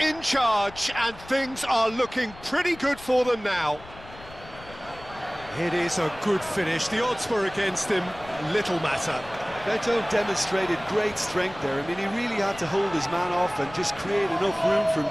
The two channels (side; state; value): left; noise; rumble, 19 dB below the sound